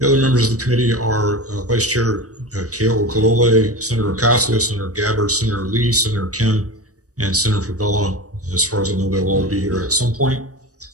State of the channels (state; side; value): late; left; 0.66 ms